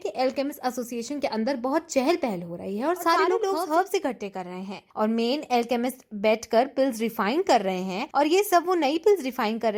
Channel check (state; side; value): identical; both; correlation 1.00